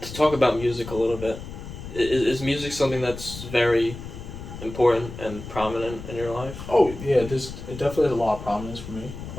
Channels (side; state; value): left; noise; rumble, 11 dB below the sound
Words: to talk about music a little bit, is music something that's very important and prominent in your life? Oh yeah, it definitely has a lot of prominence for me.